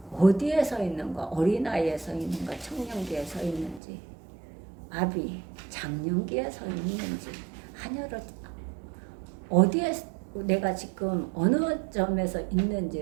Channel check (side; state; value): left; drops out; at 3.8 s